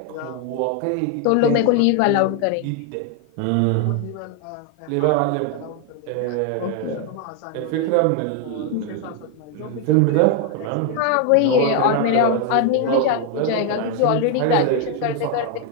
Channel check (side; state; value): both; different; correlation 0.01